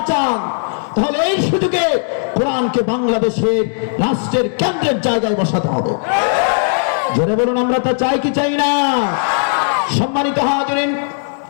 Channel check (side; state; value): right; silent; digital silence